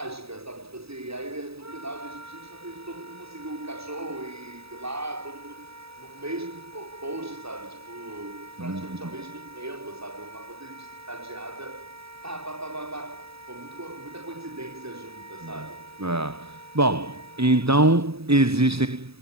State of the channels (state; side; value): late; left; 0.77 ms